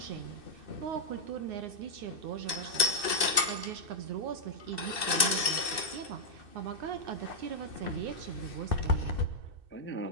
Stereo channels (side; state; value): left; late; 2.6 ms